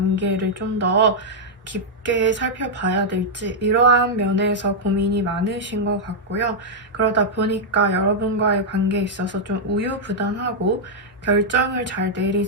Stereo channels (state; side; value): normal; both; correlation -0.04